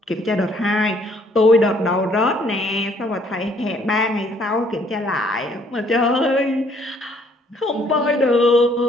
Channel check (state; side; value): normal; both; correlation 0.64